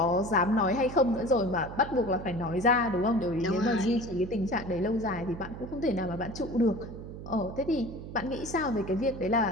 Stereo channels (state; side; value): noise; right; hum, 11 dB below the sound